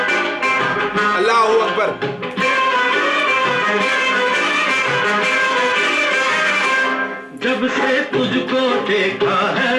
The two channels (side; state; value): both; identical; correlation 1.00